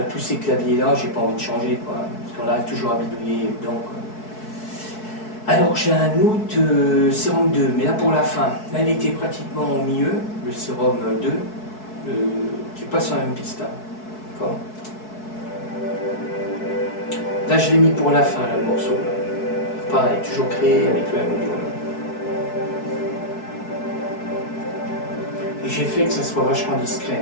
tous ces claviers-là, j'ai pas envie de changer, quoi. Parce qu'on arrive toujours à bidouiller dedans, quoi. Alors, j'ai un autre sérum 2, mais là pour la fin. Là, il était pratiquement au milieu, le sérum 2, qui passe sur la même piste. Hein. D'accord. Là, je l'ai mis pour la fin, là, le morceau. Là. Pareil, toujours créé avec le M-Audio. Et j'ai fait que ça soit vachement discret.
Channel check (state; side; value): late; right; 4.6 ms